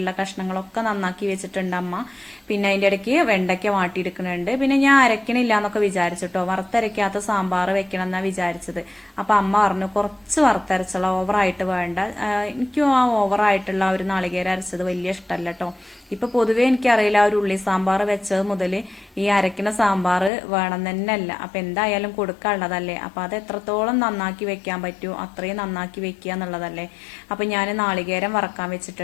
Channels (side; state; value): right; drops out; at 20.3 s